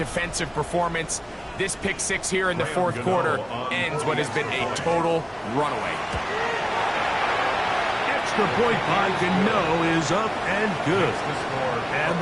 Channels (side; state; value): both; identical; correlation 1.00